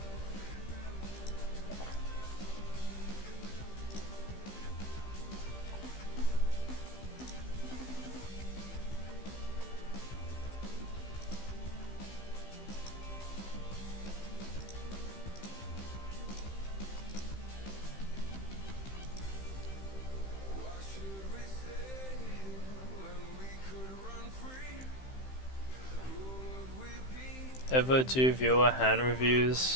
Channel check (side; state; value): right; late; 15 ms